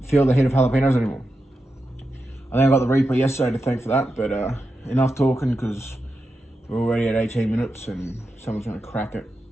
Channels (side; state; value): both; normal; correlation 0.89